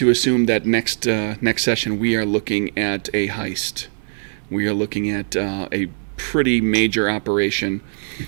assume that next session we are looking at a heist? We are looking at a pretty major operation.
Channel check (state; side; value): silent; left; digital silence